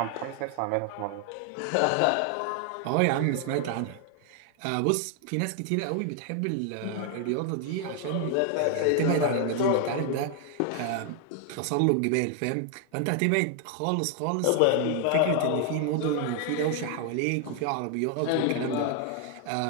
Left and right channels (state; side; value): different; both; correlation 0.00